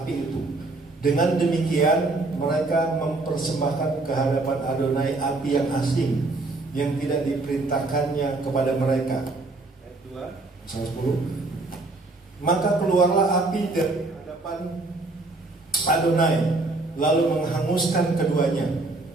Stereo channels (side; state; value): left; quieter; 3.2 dB